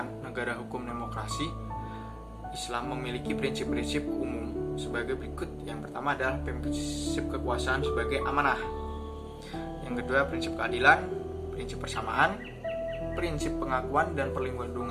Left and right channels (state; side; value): identical; both; correlation 1.00